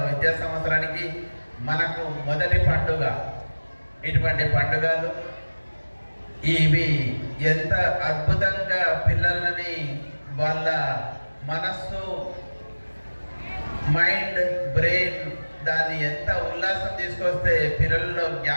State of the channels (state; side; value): inverted; both; correlation -1.00